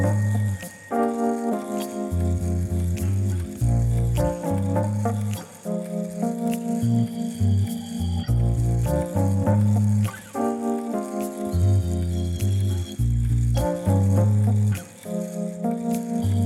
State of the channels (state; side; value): identical; both; correlation 1.00